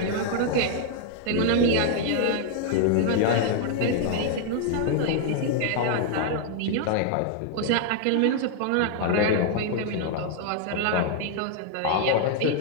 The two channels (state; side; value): different; both; correlation 0.00